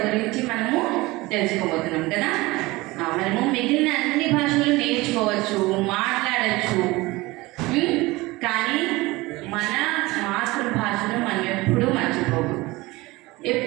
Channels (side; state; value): left; quieter; 21.2 dB